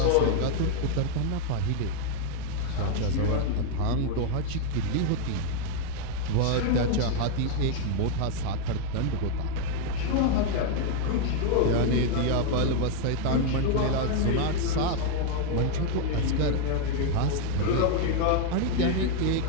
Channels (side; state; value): both; different; correlation 0.00